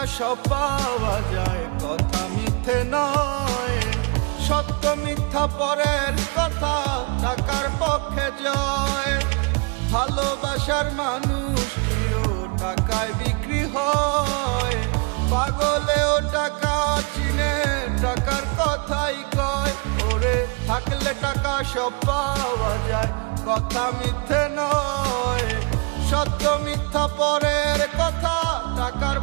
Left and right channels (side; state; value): left; quieter; 33.5 dB